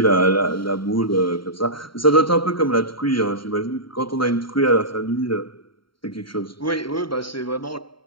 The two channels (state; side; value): late; right; 0.73 ms